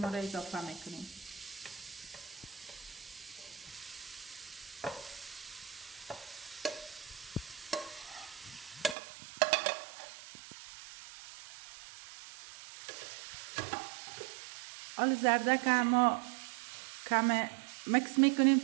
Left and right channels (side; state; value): left; drops out; at 9.0 s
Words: را اضافه میکنیم. حالا زردک ما کم مکس میکنیم